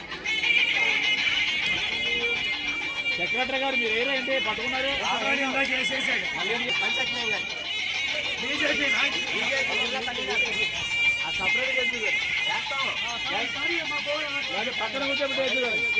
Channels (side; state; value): both; identical; correlation 1.00